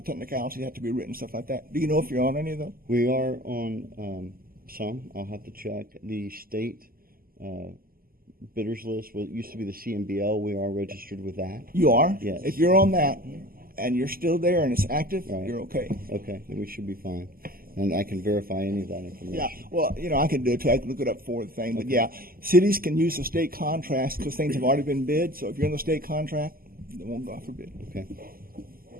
technicalities have to be written, stuff like that. Do you know if you're on any of those? We are on some. I'll have to check. The state bidders list, what used to be the CMBL, we are registered with that. You are. Yes. If you're on that and you're still there and it's active, Right. you're okay. Okay, then we should be fine. And I can verify any of that information. Yeah, well, I can do it too. I can look it up for the thing. But yeah, cities can use the state contracts because things have already been bid. So if you're in the state contract, they won't go out for bid. Okay.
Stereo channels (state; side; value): late; left; 0.42 ms